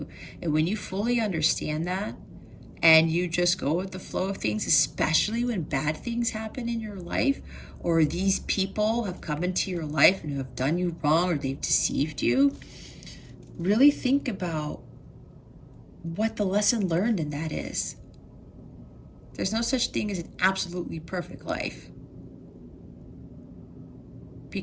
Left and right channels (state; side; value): identical; both; correlation 1.00